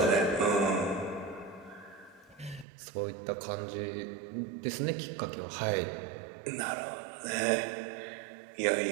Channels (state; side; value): drops out; left; at 2.7 s